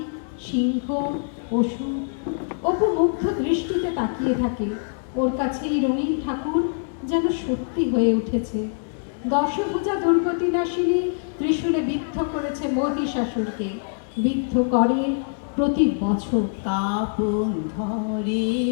সিংহ, পশু। অপু মুগ্ধ দৃষ্টিতে তাকিয়ে থাকে। ওর কাছে এই রঙিন ঠাকুর যেন সত্যি হয়ে উঠেছে। দশভুজা দুর্গতি নাশিনী ত্রিশূলে বিদ্ধ করেছে মহিষাসুরকে। বিদ্ধ করে প্রতি বছর। কাপন ধরে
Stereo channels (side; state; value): right; silent; digital silence